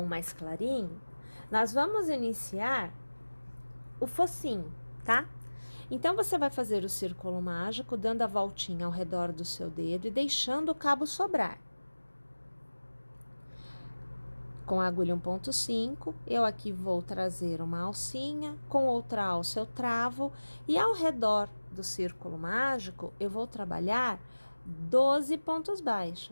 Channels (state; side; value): inverted; both; correlation -1.00